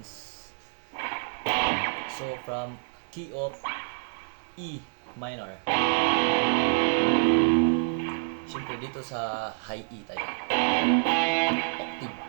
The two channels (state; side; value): silent; left; digital silence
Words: So from key of E minor. Siyempre dito sa high E tayo. Octave.